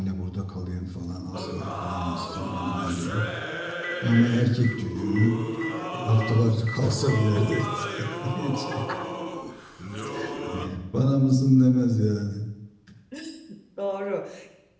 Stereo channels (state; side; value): identical; both; correlation 1.00